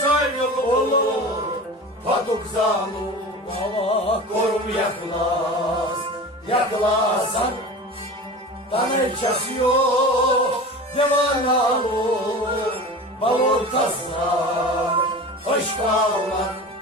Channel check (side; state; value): both; normal; correlation 0.34